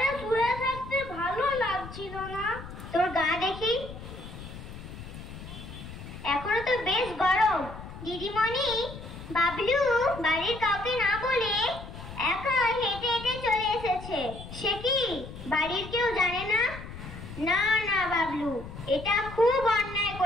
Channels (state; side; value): noise; left; rumble, 12 dB below the sound